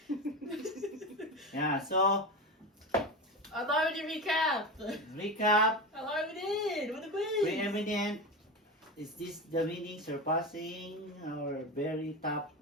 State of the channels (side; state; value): both; normal; correlation 0.22